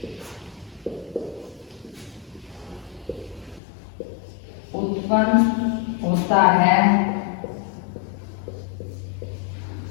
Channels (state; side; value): drops out; right; at 3.6 s